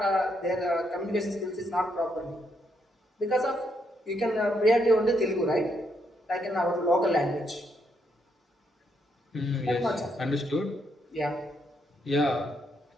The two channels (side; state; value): both; normal; correlation 0.76